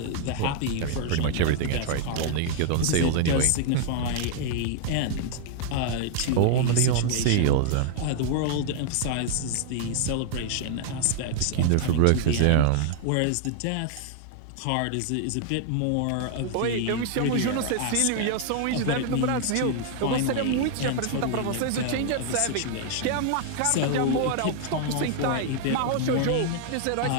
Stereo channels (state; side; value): different; both; correlation 0.00